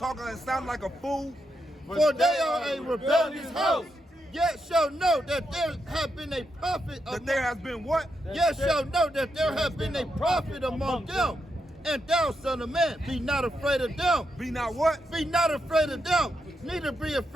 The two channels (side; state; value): both; normal; correlation 0.83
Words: and sounding like a fool? For they are a rebellious house. Yet shall know that there have been a prophet. That there has been what? Yet shall know that there have been a prophet among them. And thou, son of man, be not afraid of them. Be not what? Be not afraid of them. Neither be